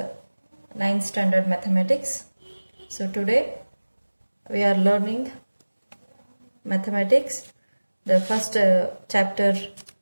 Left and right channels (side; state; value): both; inverted; correlation -1.00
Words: 9th standard mathematics. So today we are learning mathematics, the first chapter